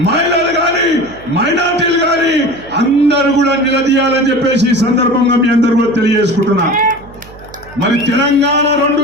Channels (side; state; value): right; noise; hum, 21 dB below the sound